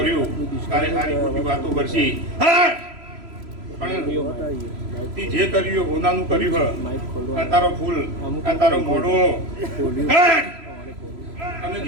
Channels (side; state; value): left; late; 3.0 ms